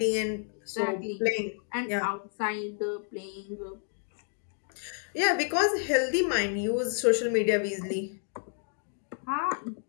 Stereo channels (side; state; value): right; silent; 58 dB below the other